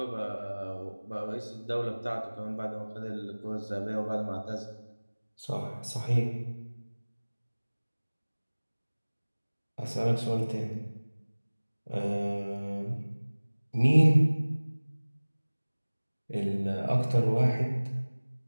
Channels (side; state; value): both; inverted; correlation -1.00